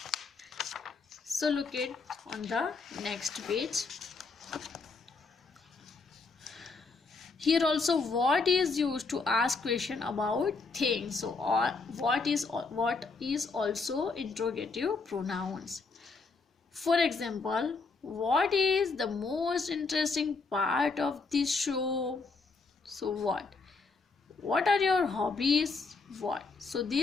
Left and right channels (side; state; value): right; quieter; 4.2 dB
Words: So look it on the next page. Here also what is used to ask question about things. So or what is also interrogative pronouns. For example, what is the most interesting part of this show? So what are your hobbies? What. So